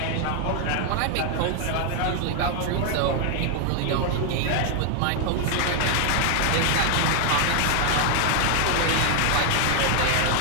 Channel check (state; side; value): different; both; correlation 0.00